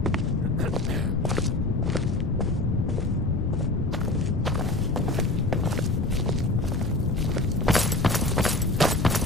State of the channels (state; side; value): noise; left; rumble, 1 dB below the sound